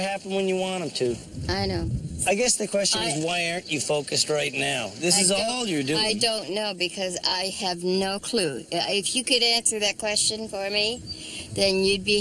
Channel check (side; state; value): both; identical; correlation 1.00